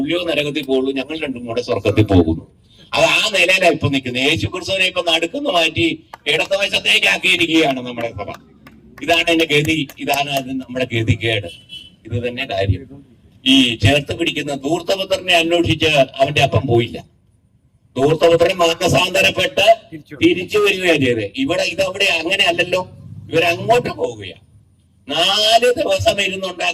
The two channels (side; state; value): both; identical; correlation 1.00